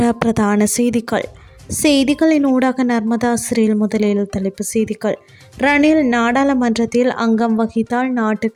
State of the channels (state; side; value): identical; both; correlation 1.00